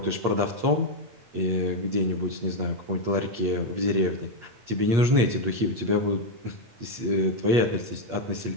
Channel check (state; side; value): late; left; 8.5 ms